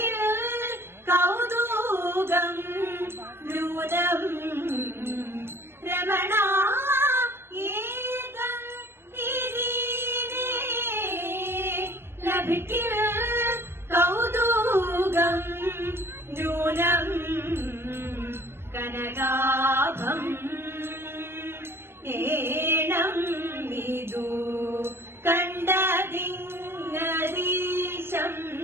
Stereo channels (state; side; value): late; left; 0.12 ms